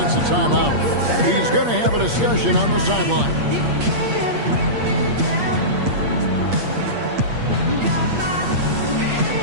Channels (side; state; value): left; late; 8.5 ms